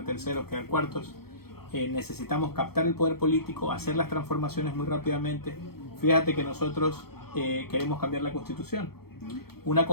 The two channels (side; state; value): right; late; 0.95 ms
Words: terceros, quedar cuartos. Necesitamos captar el poder político, hacer las transformaciones muy rápidamente. Fíjate que nosotros queremos cambiar la Constitución. Una